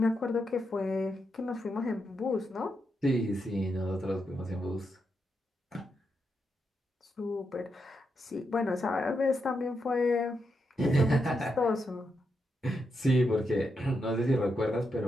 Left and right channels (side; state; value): both; normal; correlation 0.83